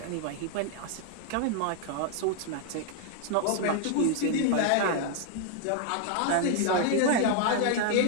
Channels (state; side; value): different; both; correlation 0.00